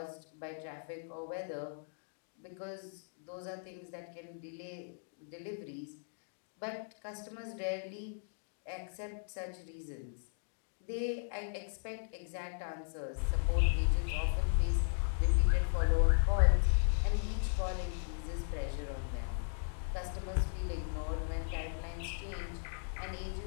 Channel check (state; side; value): silent; right; digital silence